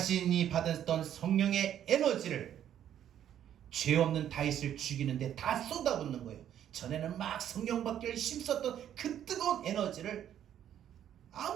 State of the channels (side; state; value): left; quieter; 10.4 dB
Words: 받았던 성령의 에너지를 죄 없는 다윗을 죽이는데 다 쏟아붓는 거예요. 전에는 막 성령 받기를 힘썼던 그 뜨거운 에너지를